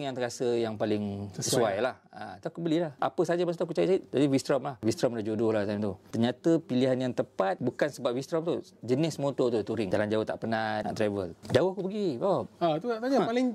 yang terasa yang paling sesuai lah. Tu aku belilah. Apa saja masa tu aku cari. Jadi V-Strom lah. V-Strom dah jodoh lah time tu. Ternyata pilihan yang tepat bukan sebab V-Strom tu. Jenis motor tu touring. Jalan jauh tak penat, nak travel. Jauh aku pergi. Tu nak tanya,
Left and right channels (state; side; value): identical; both; correlation 1.00